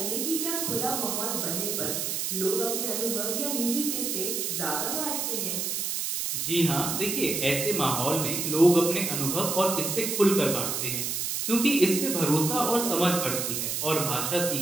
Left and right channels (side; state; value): right; noise; hiss, 1 dB below the sound